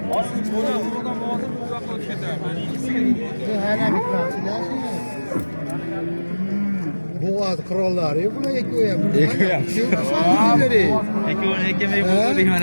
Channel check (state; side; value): inverted; both; correlation -1.00